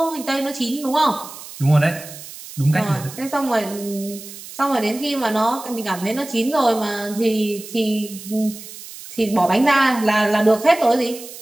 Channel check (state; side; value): noise; right; hiss, 14 dB below the sound